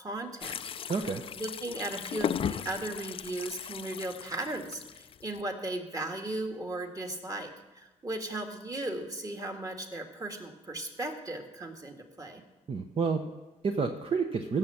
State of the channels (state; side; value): normal; both; correlation 0.56